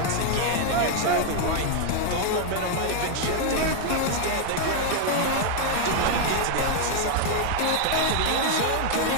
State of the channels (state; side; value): different; both; correlation 0.00